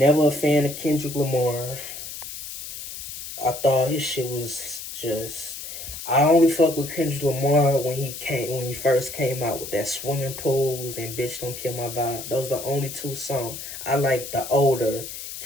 a fan of Kendrick Lamar. I thought his shit was just. I only fuck with Kendrick Lamar when he first came out with that swimming pools and bitch don't kill my vibe. Those are the only two songs. I like the older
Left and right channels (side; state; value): left; noise; hiss, 10 dB below the sound